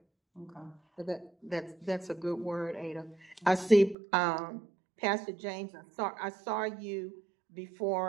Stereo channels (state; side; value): drops out; left; at 4.0 s